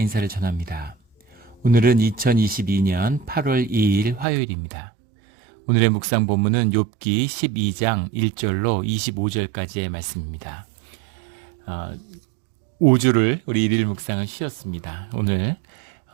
전합니다. 오늘은 2022년 8월 2일 화요일입니다. 오늘의 묵상 본문은 욥기 12장 1절로 25절까지의 말씀입니다. 5주를 우리 일일 묵상을 쉬었습니다. 오늘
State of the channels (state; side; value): drops out; left; at 4.2 s